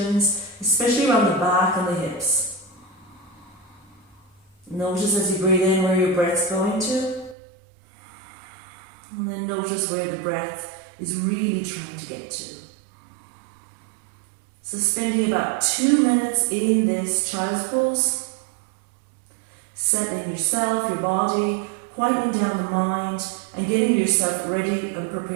especially around the back and the hips. Notice as you breathe in where your breath's going to, and then notice where the breath is really trying to get to. So spending about 2 minutes in this child's pose, settling yourself, your body, quieting down the mind, and getting yourself ready and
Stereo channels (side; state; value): left; drops out; at 7.4 s